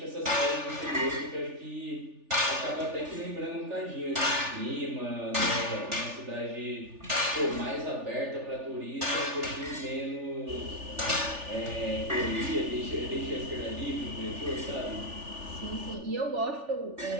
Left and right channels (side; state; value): left; late; 3.4 ms